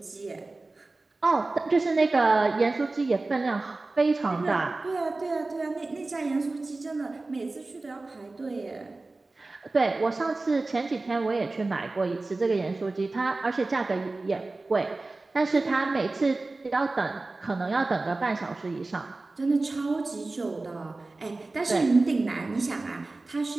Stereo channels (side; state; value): left; quieter; 3.3 dB